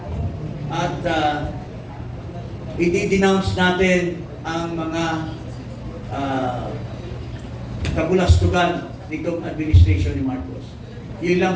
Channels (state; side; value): identical; both; correlation 1.00